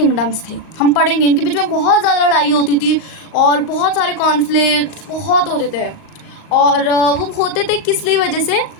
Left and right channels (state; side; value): late; right; 38 ms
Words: थे। हम पढ़ेंगे इनके बीच में बहुत ज़्यादा लड़ाई होती थी और बहुत सारे कॉन्फ्लिक्ट बहुत होते थे। और वो होते थे किस लिए वजह से,